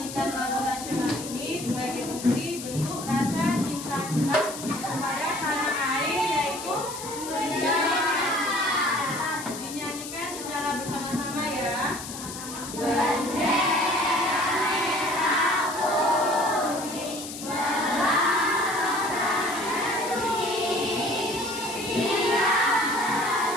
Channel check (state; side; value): noise; left; hiss, 10 dB below the sound